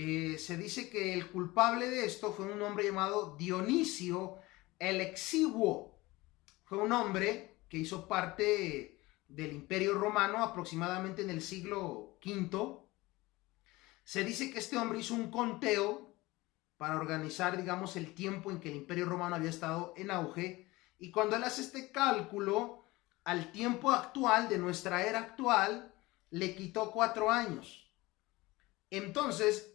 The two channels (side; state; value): right; quieter; 20.7 dB